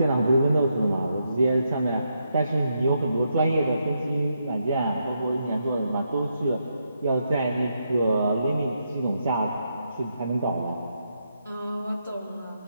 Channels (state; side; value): inverted; both; correlation -0.81